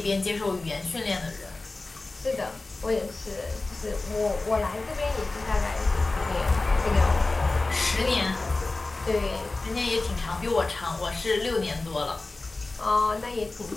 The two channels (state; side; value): quieter; right; 3.3 dB